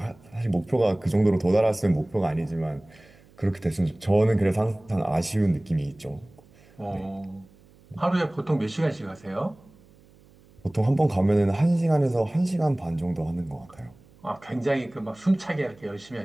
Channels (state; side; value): noise; right; hum, 27 dB below the sound